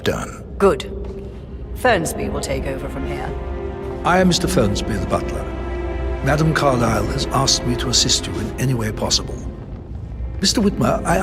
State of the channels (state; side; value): identical; both; correlation 1.00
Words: done. Good. Fernsby will take over from here. I am Mr. Fernsby, the butler. Madame Carlyle has asked me to assist you in any way possible. Mr. Whitmer, I